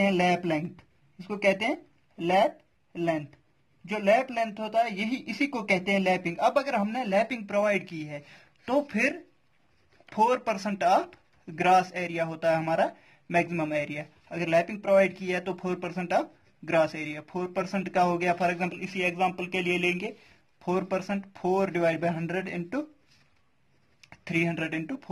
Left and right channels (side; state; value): both; identical; correlation 1.00